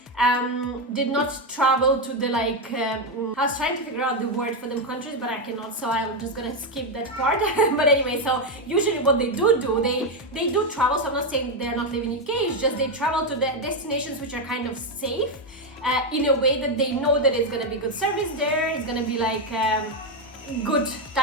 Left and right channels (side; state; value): both; normal; correlation 0.06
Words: did not travel to the like, I was trying to figure out the word for them countries, but I cannot, so I'm just gonna skip that part. But anyway, so usually what they do, they do travel, so I'm not saying they're not living in UK, it's just they travel to the destinations which are kind of safe, in a way that they know that it's gonna be good service there, it's gonna be like, good